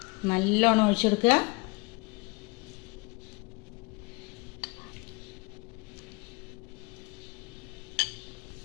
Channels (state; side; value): quieter; right; 27.0 dB